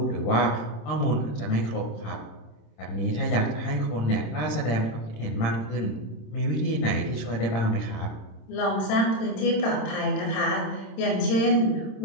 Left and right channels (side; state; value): right; late; 27 ms